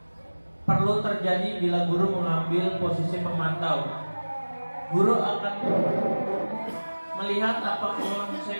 perlu terjadi bila guru mengambil posisi pemantau. Guru akan melihat apa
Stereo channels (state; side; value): inverted; both; correlation -1.00